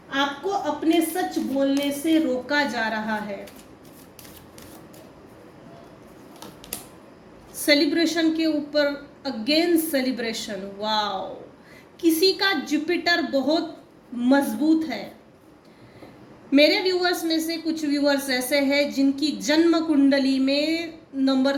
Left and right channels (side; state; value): both; identical; correlation 1.00